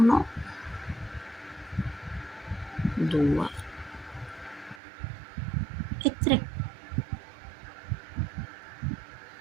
2 e 3.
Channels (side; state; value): left; drops out; at 4.8 s